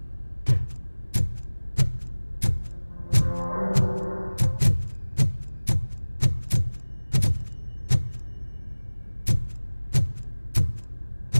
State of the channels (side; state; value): both; inverted; correlation -1.00